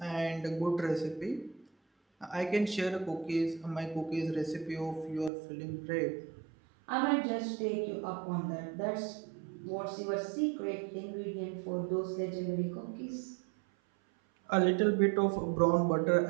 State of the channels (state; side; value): drops out; left; at 5.3 s